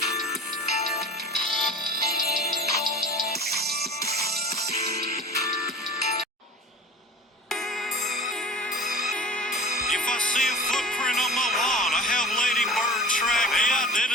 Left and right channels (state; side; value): normal; both; correlation 0.38